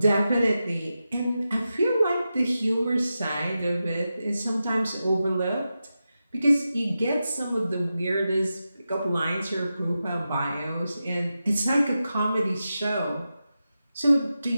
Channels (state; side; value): inverted; both; correlation -0.91